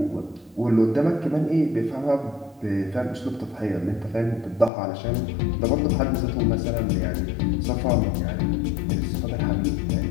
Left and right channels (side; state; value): right; drops out; at 4.7 s